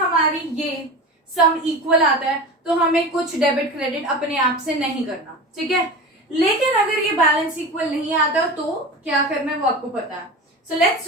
ये सम इक्वल आता है तो हमें कुछ डेबिट क्रेडिट अपने आप से नहीं करना, ठीक है। लेकिन अगर ये बैलेंस इक्वल नहीं आता तो क्या करना है वो आपको पता है। So let's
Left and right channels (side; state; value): both; normal; correlation 0.30